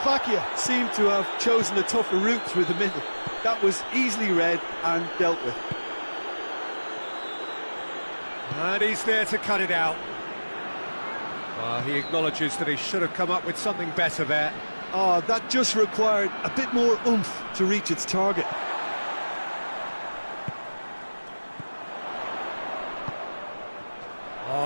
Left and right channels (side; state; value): both; inverted; correlation -1.00